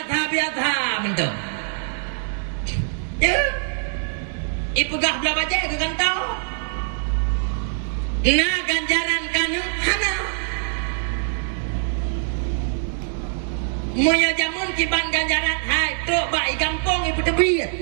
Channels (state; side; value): silent; left; digital silence